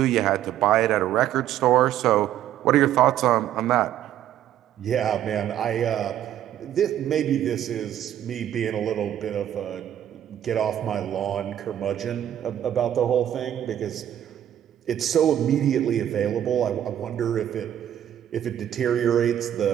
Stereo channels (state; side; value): quieter; left; 11.1 dB